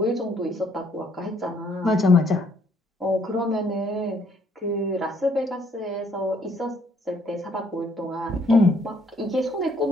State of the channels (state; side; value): normal; both; correlation 0.66